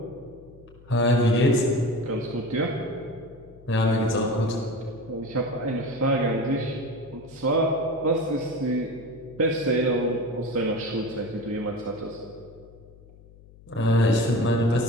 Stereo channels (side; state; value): left; noise; hum, 23 dB below the sound